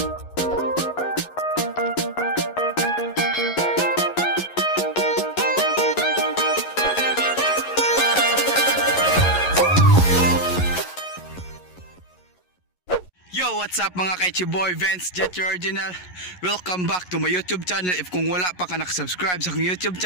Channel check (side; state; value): right; late; 11 ms